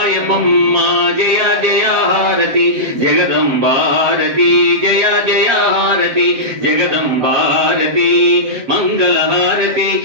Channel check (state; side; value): late; left; 7.7 ms